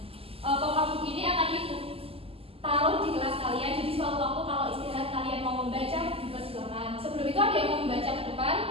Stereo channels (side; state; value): left; late; 0.28 ms